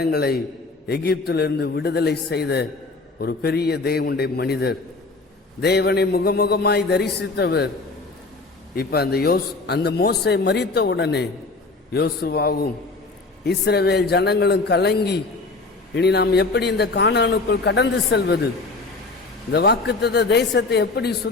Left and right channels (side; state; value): right; quieter; 3.6 dB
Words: எகிப்திலிருந்து விடுதலை செய்த ஒரு பெரிய தேவனுடைய மனிதர், தேவனை முகமுகமாய் தரிசித்தவர். இப்ப அந்த மோசே மரித்த உடனே யோசுவாவும் இஸ்ரவேல் ஜனங்களும் கலங்கி, இனி நாம் எப்படி இந்த கானானுக்குள் கடந்து செல்வது, இந்த வாக்குத்தத்த தேசத்தை எப்படி